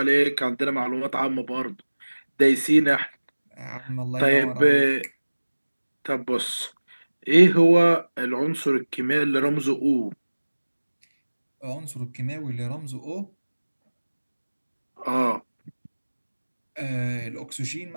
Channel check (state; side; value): inverted; both; correlation -1.00